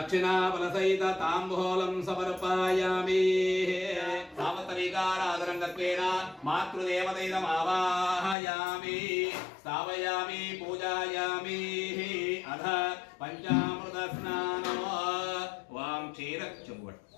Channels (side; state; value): right; drops out; at 8.3 s